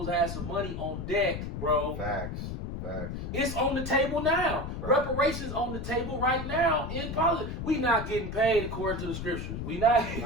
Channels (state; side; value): noise; left; rumble, 6 dB below the sound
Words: to have some money on deck, bro. Facts. It's on the table now. Right. Reparations on the table right now in politics. We not getting paid according to the scriptures. We not